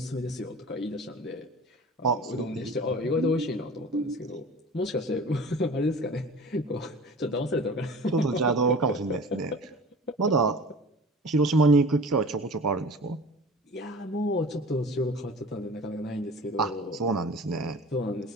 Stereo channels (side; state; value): both; normal; correlation 0.40